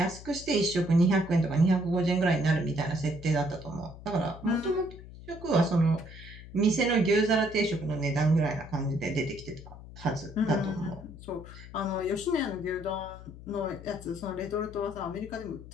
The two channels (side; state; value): left; noise; hum, 16 dB below the sound